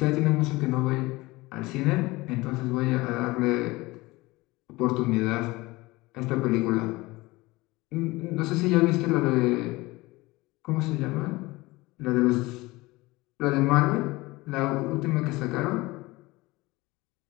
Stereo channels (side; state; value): right; quieter; 21.2 dB